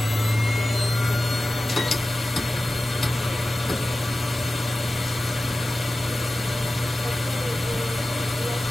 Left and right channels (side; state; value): both; normal; correlation 0.95